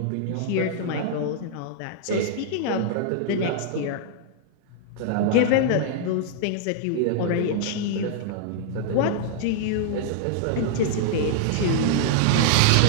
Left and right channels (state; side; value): different; both; correlation -0.01